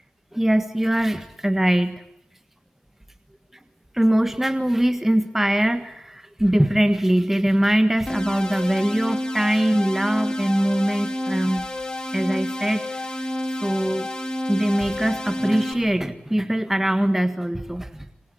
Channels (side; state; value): both; normal; correlation 0.98